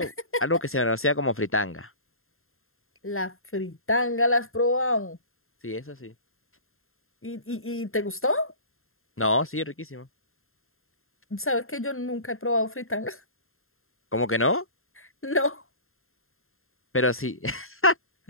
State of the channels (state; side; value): late; right; 0.61 ms